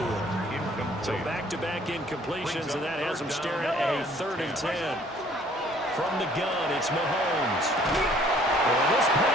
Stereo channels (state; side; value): normal; both; correlation 0.58